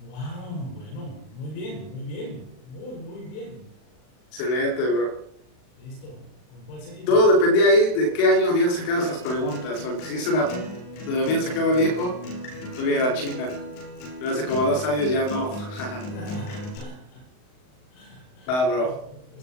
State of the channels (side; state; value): right; late; 39 ms